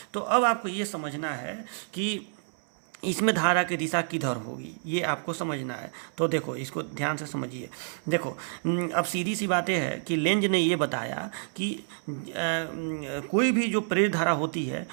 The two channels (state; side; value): silent; left; 59 dB below the other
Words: तो अब आपको ये समझना है कि इसमें धारा की दिशा किधर होगी, ये आपको समझना है। तो देखो इसको ध्यान से समझिए। देखो अब सीधी सी बातें है कि लेंज ने ये बताया कि कोई भी जो प्रेरित धारा होती है